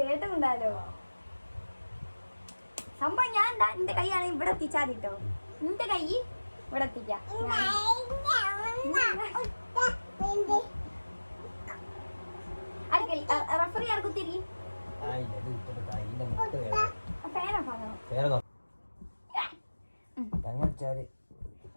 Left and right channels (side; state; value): both; inverted; correlation -1.00